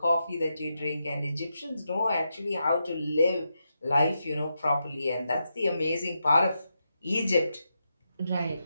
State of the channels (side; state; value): both; inverted; correlation -0.85